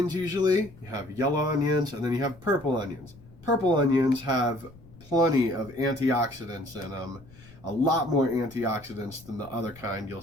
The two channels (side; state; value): left; noise; rumble, 22 dB below the sound